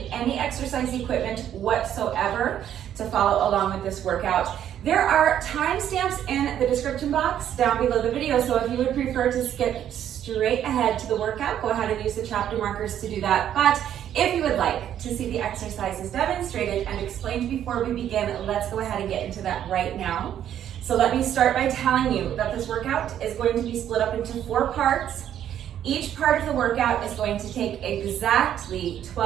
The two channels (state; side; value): quieter; left; 10.4 dB